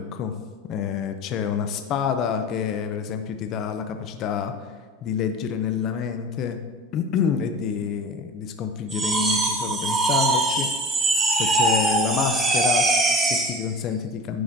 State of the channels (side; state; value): both; normal; correlation 0.36